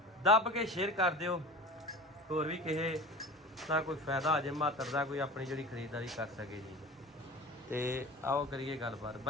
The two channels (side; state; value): both; normal; correlation 0.36